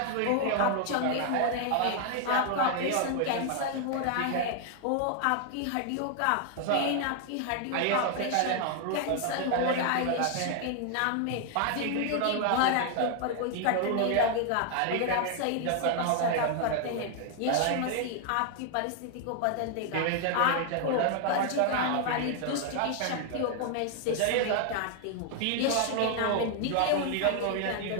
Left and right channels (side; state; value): both; different; correlation 0.00